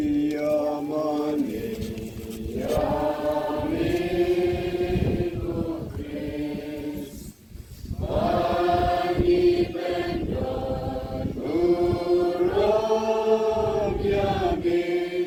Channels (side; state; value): both; identical; correlation 1.00